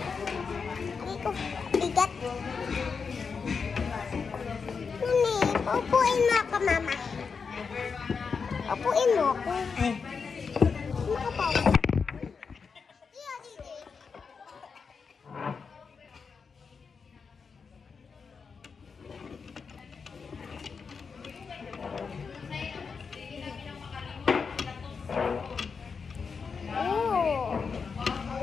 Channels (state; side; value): quieter; right; 5.5 dB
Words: Hindi ko bigat. Mami, upuin mo ako, mama. Upuin mo ako. Eh. Makapaupo.